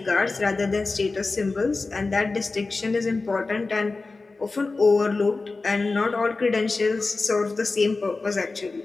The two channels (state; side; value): quieter; right; 3.7 dB